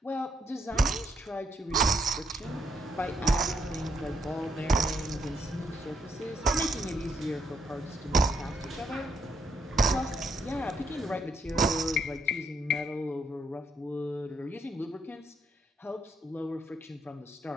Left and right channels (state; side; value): normal; both; correlation 0.75